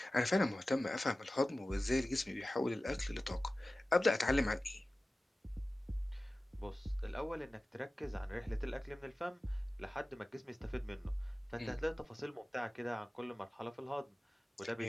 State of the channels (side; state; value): both; normal; correlation 0.96